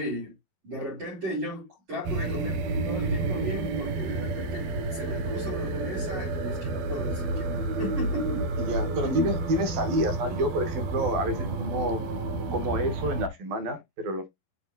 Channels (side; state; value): left; late; 12 ms